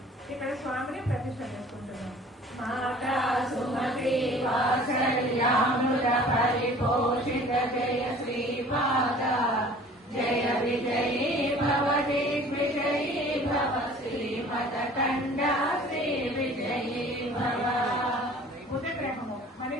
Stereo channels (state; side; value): normal; both; correlation 0.48